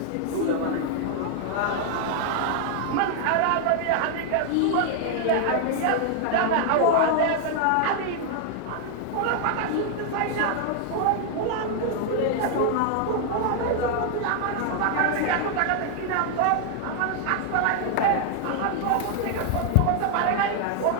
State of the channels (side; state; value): both; different; correlation 0.00